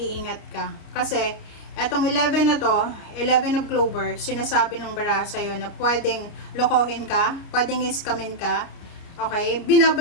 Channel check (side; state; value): right; late; 30 ms